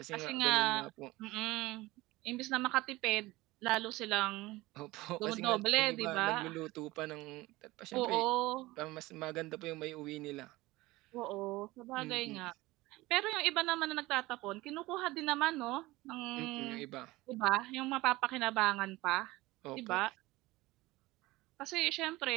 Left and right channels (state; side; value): quieter; left; 19.7 dB